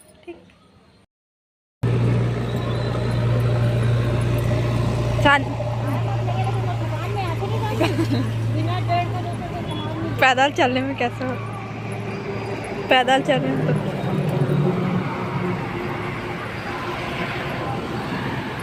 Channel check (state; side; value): identical; both; correlation 1.00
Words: ठीक। पैदल चलने में कैसे हो, पैदल चलने में तो